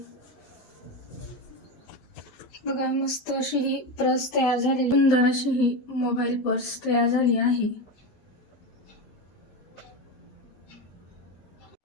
बघा, मस्त अशी ही पर्स तयार झालेली, सुंदर अशी ही मोबाईल पर्स तयार झाली आहे.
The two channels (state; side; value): late; right; 12 ms